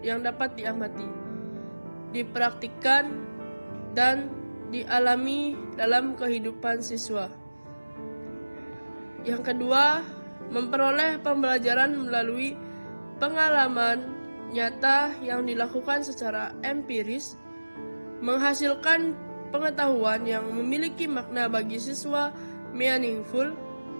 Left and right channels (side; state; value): both; inverted; correlation -1.00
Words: dapat diamati, dipraktikkan, dan dialami dalam kehidupan siswa. Yang kedua, memperoleh pembelajaran melalui pengalaman nyata yang dilakukan secara empiris, menghasilkan pengetahuan yang memiliki makna bagi siswa, meaningful,